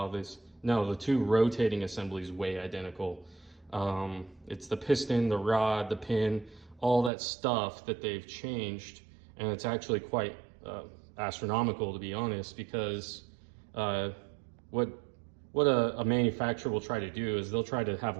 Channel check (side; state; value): left; drops out; at 7.1 s